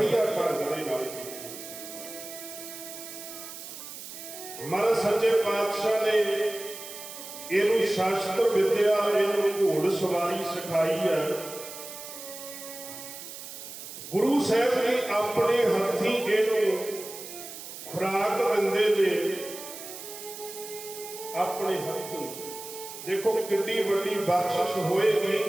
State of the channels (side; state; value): right; noise; hiss, 12 dB below the sound